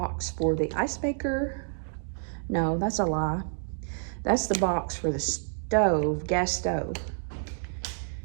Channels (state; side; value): silent; left; digital silence